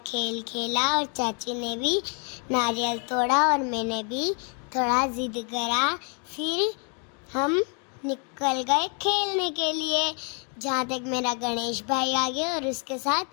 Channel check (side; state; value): right; quieter; 38.8 dB